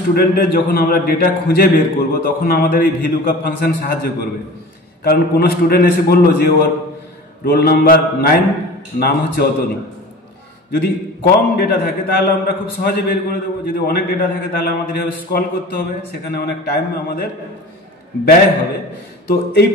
যখন আমরা ডেটা খুঁজে বের করব তখন আমাদের এই ভিলুকআপ ফাংশন সাহায্য করবে। কারণ কোনো স্টুডেন্ট এসে বললো যে ওর রোল নাম্বার 9, নাম হচ্ছে অতনু। যদি কম ডেটা থাকে তাহলে আমরা খুব সহজে বের করে দেবো, যদি অনেক ডেটা থাকে তাহলে আমাদের এভাবে স্ক্রল করতে হবে, সেখানে অনেক টাইম আমাদের ব্যয় হবে। তো এই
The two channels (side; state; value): both; normal; correlation 0.38